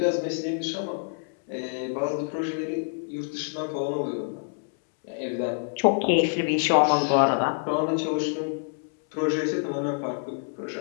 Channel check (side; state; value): right; silent; 60 dB below the other